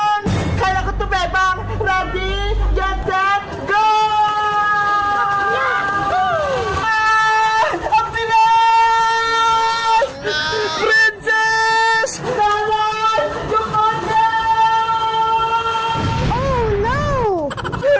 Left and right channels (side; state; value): both; identical; correlation 1.00